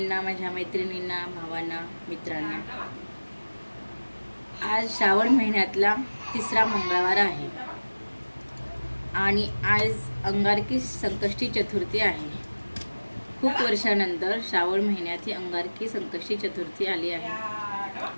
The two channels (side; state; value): both; inverted; correlation -1.00